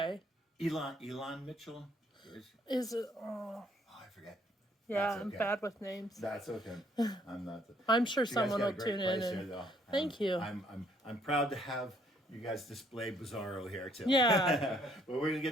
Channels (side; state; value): both; normal; correlation 0.65